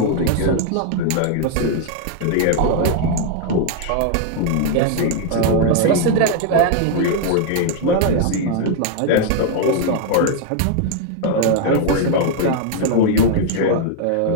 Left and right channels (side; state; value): both; different; correlation 0.00